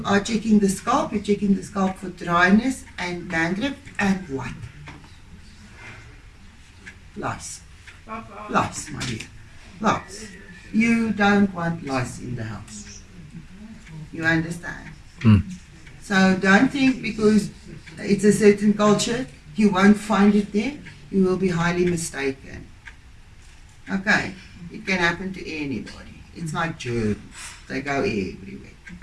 are checking the scalp. You're checking the scalp for dryness and dandruff and what? Lice. Lice, my dear. Lice. You don't want lice in the house. You understand? So don't think because it's a certain culture, you won't find it there. You will be highly mistaken. Okay? It can happen to anybody. It's like germs. They go everywhere.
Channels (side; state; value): both; identical; correlation 1.00